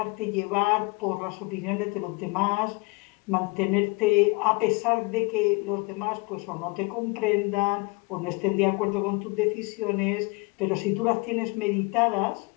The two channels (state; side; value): quieter; right; 27.8 dB